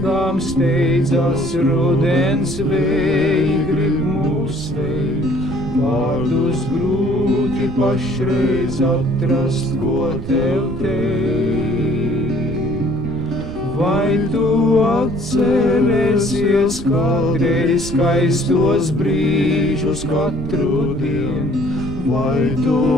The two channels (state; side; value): noise; right; rumble, 9 dB below the sound